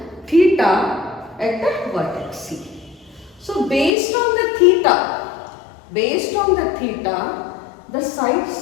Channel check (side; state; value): right; drops out; at 3.9 s